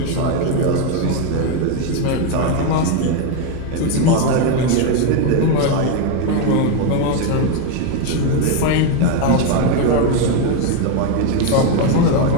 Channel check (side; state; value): both; different; correlation 0.02